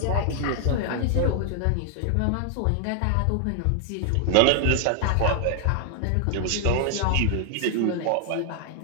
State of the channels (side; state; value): both; different; correlation 0.00